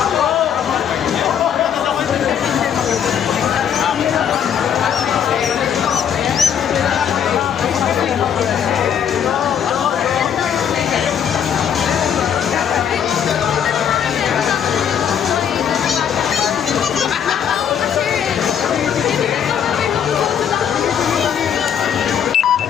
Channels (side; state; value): right; quieter; 8.5 dB